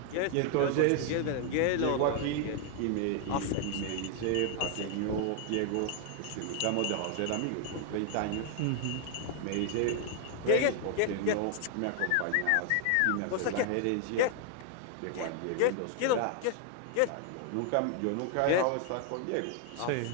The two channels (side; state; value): both; different; correlation 0.00